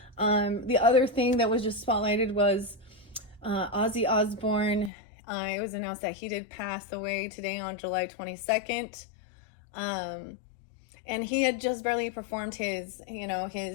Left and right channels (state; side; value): drops out; right; at 4.9 s